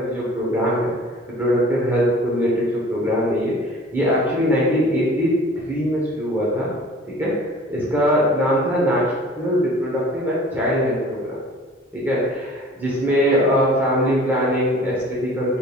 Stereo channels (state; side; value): normal; both; correlation 0.46